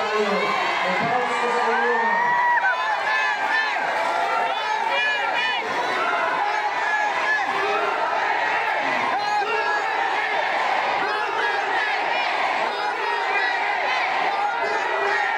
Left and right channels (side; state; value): both; identical; correlation 1.00